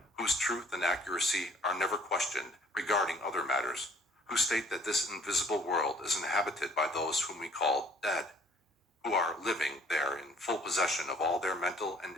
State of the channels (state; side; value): normal; both; correlation 0.57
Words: whose truth and accuracy are never questioned regarding other matters, who state that this invisible world is inhabited by those whom we call dead, who are living there in full possession of all their mental and